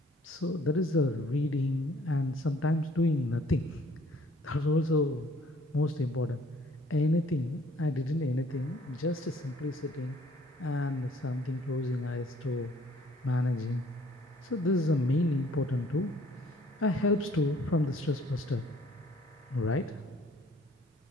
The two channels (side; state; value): both; normal; correlation 0.59